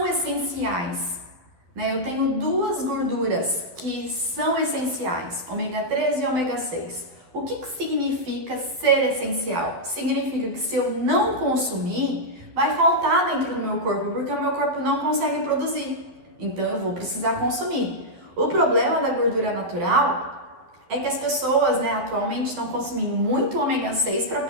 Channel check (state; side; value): late; left; 11 ms